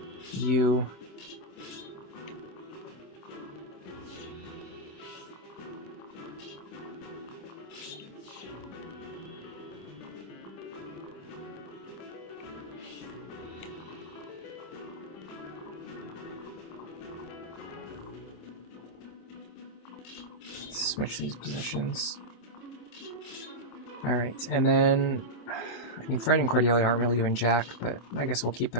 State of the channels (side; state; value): right; late; 25 ms